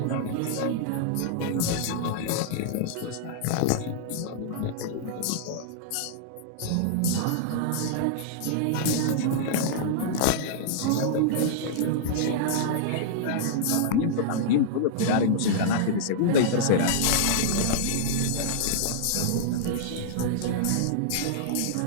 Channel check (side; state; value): both; different; correlation -0.02